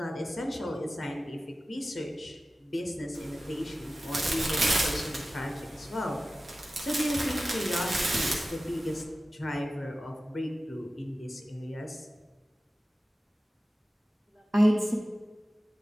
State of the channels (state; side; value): normal; both; correlation 0.95